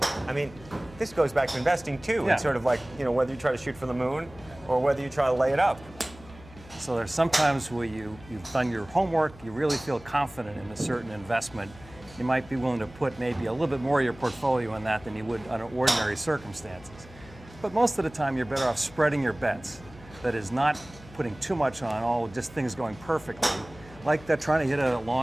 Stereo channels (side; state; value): left; noise; hum, 20 dB below the sound